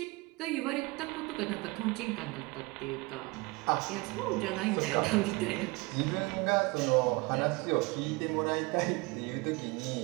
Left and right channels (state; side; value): quieter; left; 24.6 dB